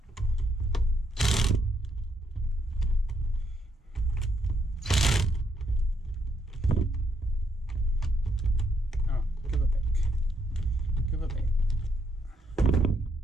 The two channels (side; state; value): both; normal; correlation 0.75